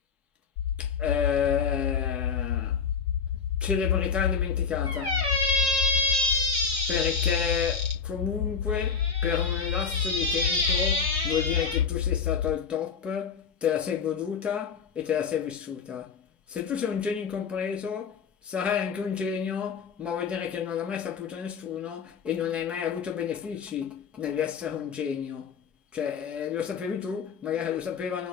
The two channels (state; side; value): quieter; right; 6.1 dB